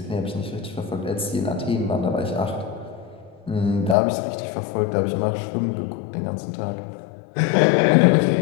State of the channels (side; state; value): right; drops out; at 4.0 s